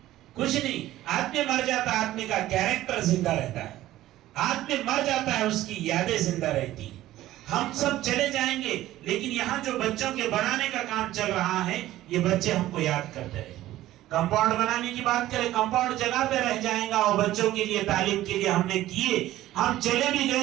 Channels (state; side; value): quieter; left; 14.8 dB